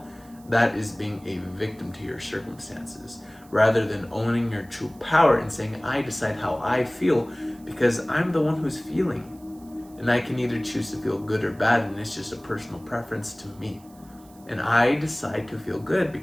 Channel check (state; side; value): noise; right; hiss, 27 dB below the sound